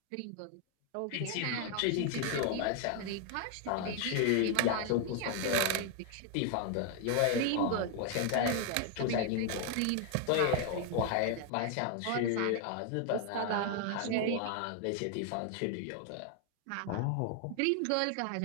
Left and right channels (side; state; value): both; different; correlation 0.00